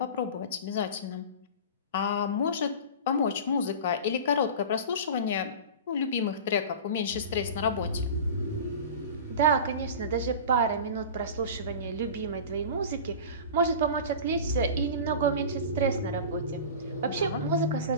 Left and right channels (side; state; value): both; inverted; correlation -0.33